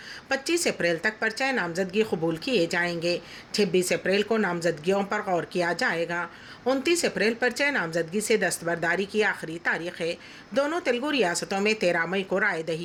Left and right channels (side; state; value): both; identical; correlation 1.00